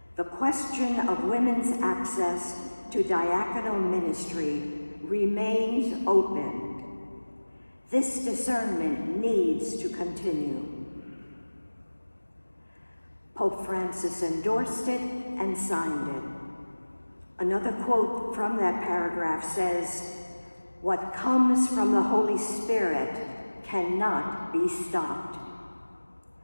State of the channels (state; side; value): inverted; both; correlation -1.00